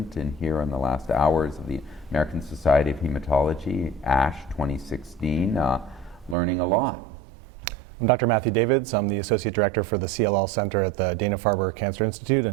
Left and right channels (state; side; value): drops out; left; at 6.4 s